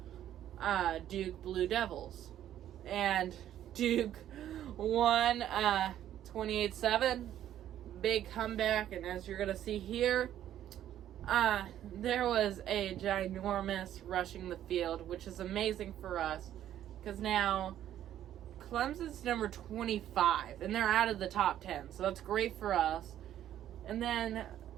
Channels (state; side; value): quieter; left; 11.5 dB